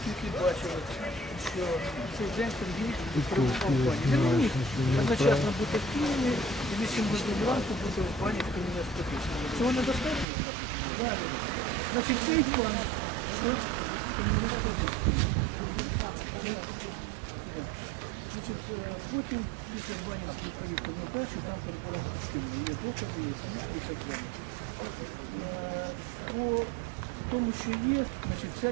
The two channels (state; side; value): drops out; left; at 10.2 s